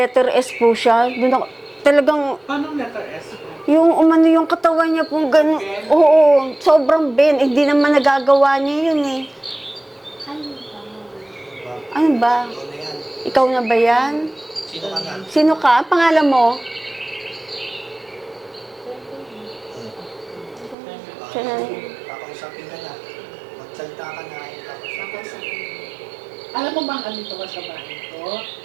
S po siya. Doon ako, talagang, Paano letter S po? Yung umano yung katawan niya po gano'n. Oo, sobrang ben. Hindi naman nagagawa niya yun eh. Ano ba? Ikaw na yan. Ikaw na ba yan? Sino ka na? Sino ka? Ang pangalan mo? Siya na. Kakausapin ka na. Magsalita ka na. Kakausapin. Alam mo bang andito ka sa bahay ko?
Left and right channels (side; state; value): left; drops out; at 20.8 s